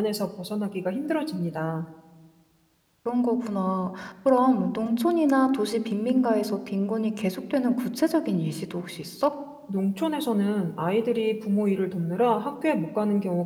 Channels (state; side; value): identical; both; correlation 1.00